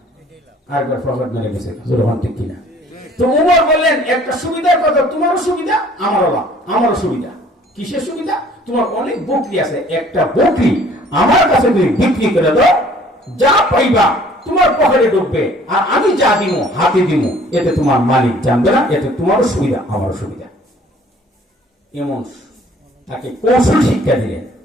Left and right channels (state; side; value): normal; both; correlation 0.55